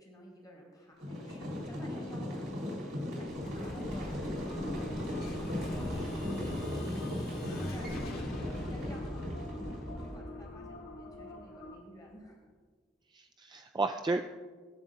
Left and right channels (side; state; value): both; normal; correlation 0.74